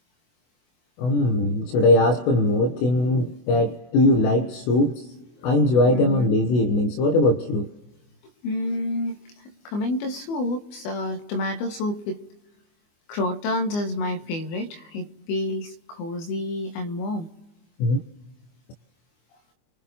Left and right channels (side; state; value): right; late; 24 ms